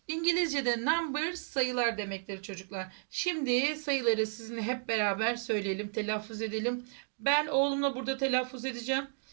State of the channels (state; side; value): silent; left; digital silence